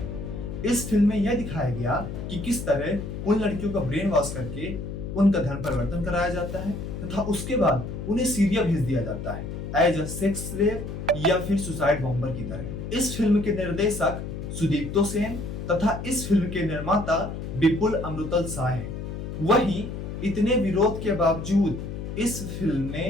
इस फिल्म में यह दिखाया गया कि किस तरह उन लड़कियों का ब्रेन वॉश करके उनका धर्म परिवर्तन कराया जाता है तथा उसके बाद उन्हें सीरिया भेज दिया जाता है एज अ सेक्स स्लेव या फिर सुसाइड बॉम्बर की तरह। इस फिल्म के निर्देशक सुदीप्तो सेन तथा इस फिल्म के निर्माता विपुल अमृतल शाह हैं। वहीं इतने विरोध के बावजूद इस फिल्म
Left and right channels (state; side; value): noise; left; hum, 7 dB below the sound